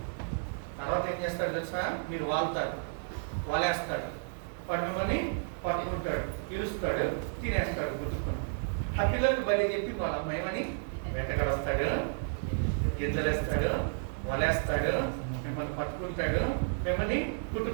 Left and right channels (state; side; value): silent; left; digital silence